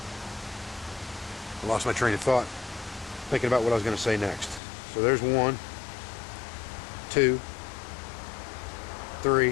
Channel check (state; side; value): drops out; right; at 4.6 s